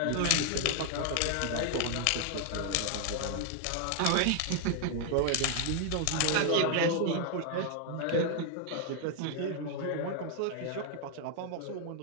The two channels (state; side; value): different; both; correlation 0.00